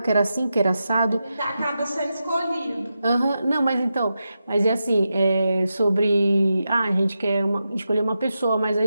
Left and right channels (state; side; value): inverted; both; correlation -0.89